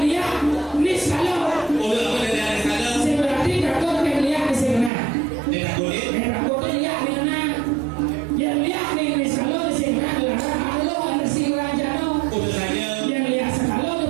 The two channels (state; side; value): drops out; left; at 4.9 s